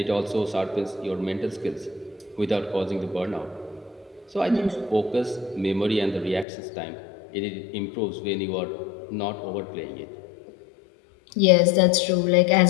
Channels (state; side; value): drops out; right; at 6.5 s